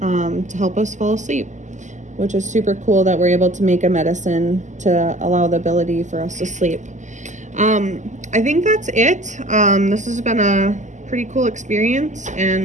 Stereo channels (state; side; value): late; left; 0.35 ms